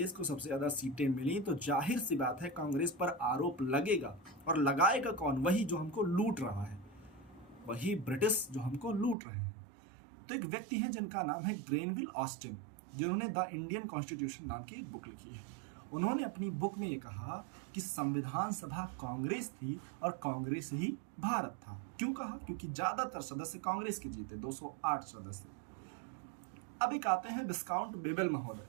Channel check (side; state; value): left; drops out; at 9.2 s